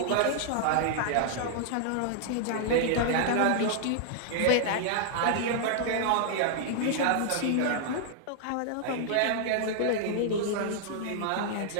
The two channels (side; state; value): both; different; correlation -0.01